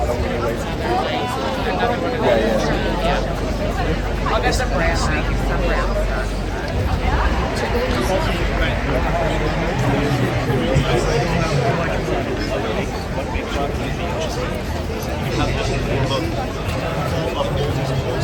I'll get some brown. Some brown.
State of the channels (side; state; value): both; identical; correlation 1.00